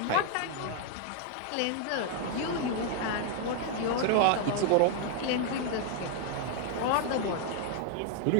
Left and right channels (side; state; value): both; different; correlation 0.00